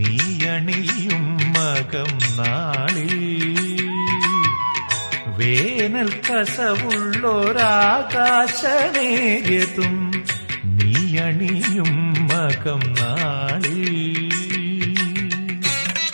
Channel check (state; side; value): inverted; both; correlation -1.00